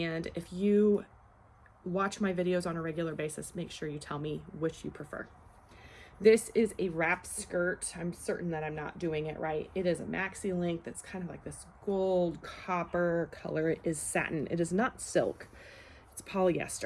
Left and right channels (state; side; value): identical; both; correlation 1.00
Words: if you watch my videos on a regular basis, make sure you tell me which you prefer. This is a wrap skirt. I'm certain that I'm not doing it right. It is a maxi length that's kind of like this gold copper color. It is satin. It is not silk. It's